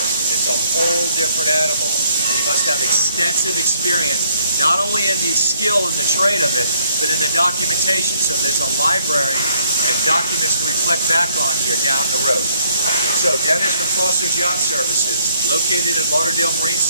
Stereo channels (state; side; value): inverted; both; correlation -0.67